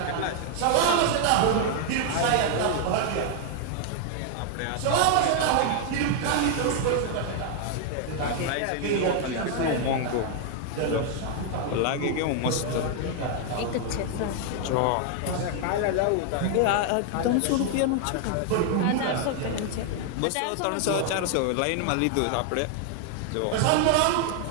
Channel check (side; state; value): both; different; correlation 0.00